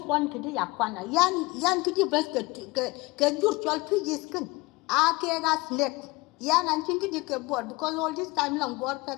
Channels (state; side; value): quieter; right; 23.4 dB